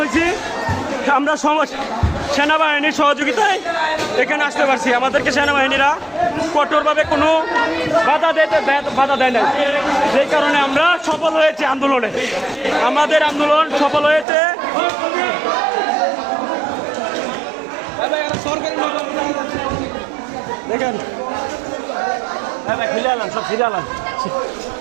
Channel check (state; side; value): drops out; left; at 14.2 s